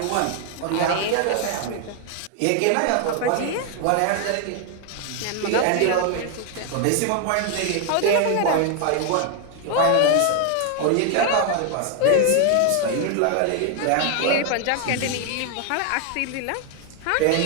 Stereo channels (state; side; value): different; both; correlation 0.00